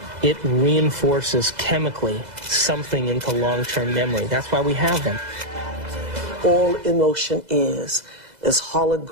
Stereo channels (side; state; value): left; late; 2.0 ms